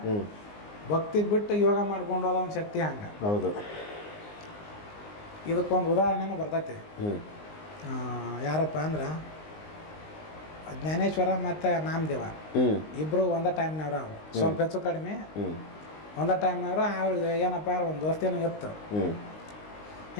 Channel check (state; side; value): late; right; 19 ms